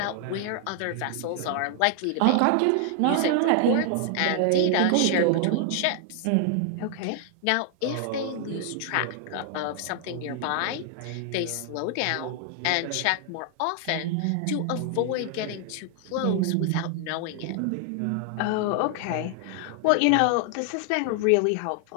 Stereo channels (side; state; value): both; different; correlation 0.00